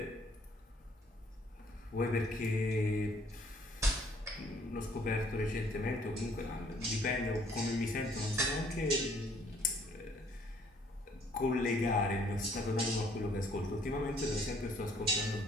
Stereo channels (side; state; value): both; normal; correlation 0.61